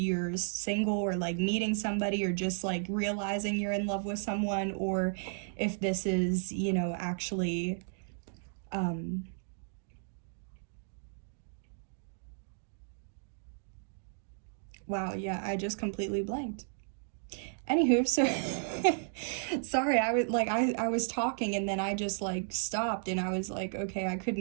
single or like meeting somebody or just like realizing you're in love with someone, or if this is, you know, actually wow, yeah, I just completely blanked. Anywho, so sorry, I was talking and then I just like stopped and I was like, okay, I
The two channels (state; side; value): silent; left; digital silence